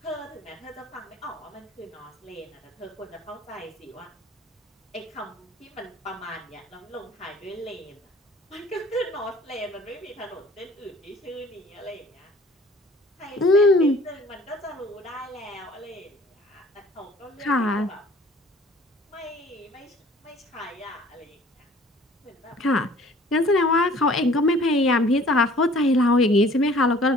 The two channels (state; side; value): normal; both; correlation 0.52